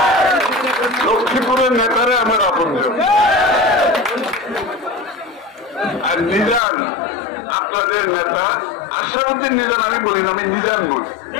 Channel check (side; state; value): right; drops out; at 6.6 s